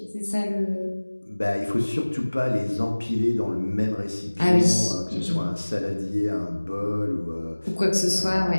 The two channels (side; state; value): both; inverted; correlation -1.00